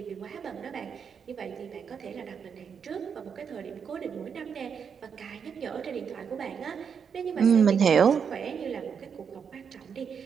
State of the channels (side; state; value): left; quieter; 6.8 dB